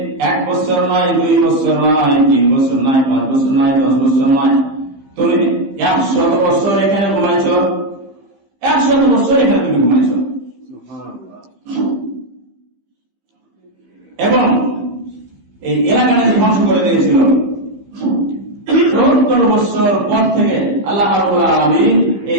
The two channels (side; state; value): left; late; 15 ms